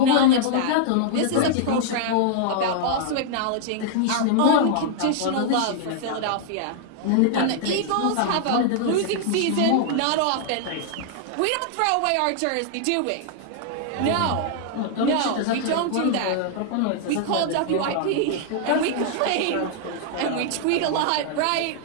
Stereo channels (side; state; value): both; different; correlation -0.01